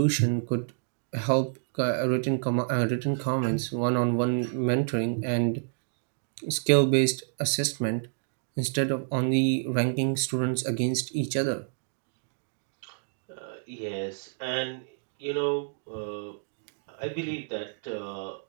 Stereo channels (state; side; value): silent; left; digital silence